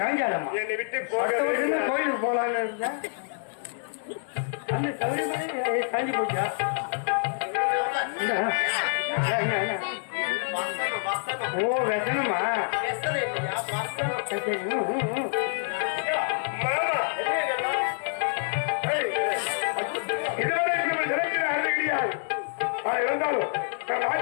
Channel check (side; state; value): right; silent; 60 dB below the other